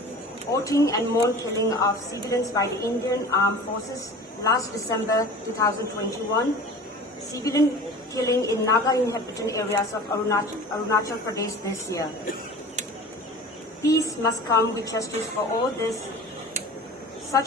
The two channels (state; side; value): normal; both; correlation 0.39